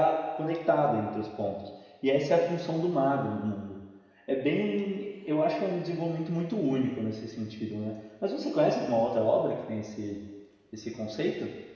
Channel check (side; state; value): both; identical; correlation 1.00